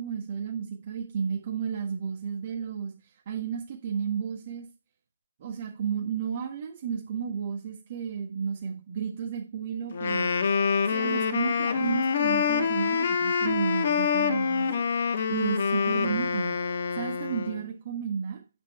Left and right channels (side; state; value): both; inverted; correlation -0.68